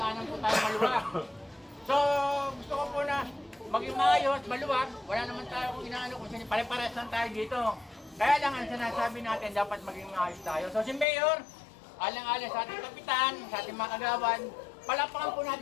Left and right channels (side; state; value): right; drops out; at 11.1 s